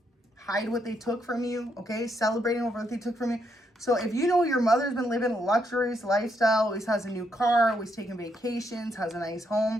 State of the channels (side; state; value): both; normal; correlation 0.77